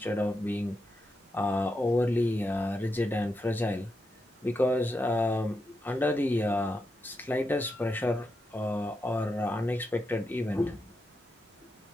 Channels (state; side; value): normal; both; correlation 0.86